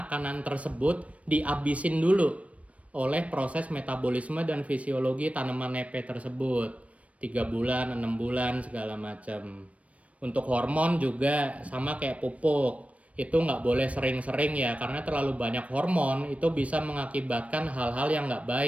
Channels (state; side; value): late; left; 0.065 ms